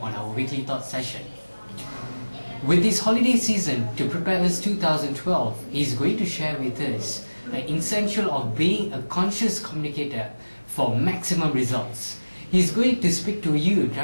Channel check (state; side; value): inverted; both; correlation -1.00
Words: on our weekly thought session. With this holiday season to prepare us 2012, he is going to share with us the essential of being a conscious communicator for maximum results. He is going to speak to you